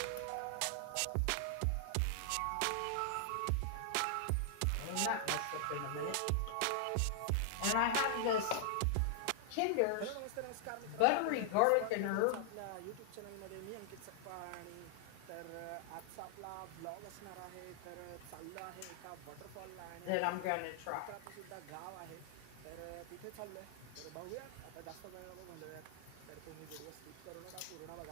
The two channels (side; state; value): both; different; correlation -0.01